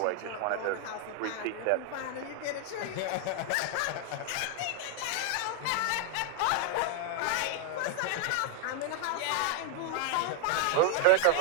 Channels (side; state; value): both; different; correlation 0.00